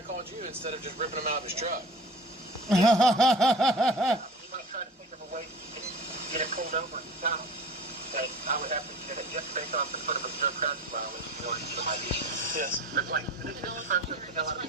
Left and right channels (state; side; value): normal; both; correlation 0.39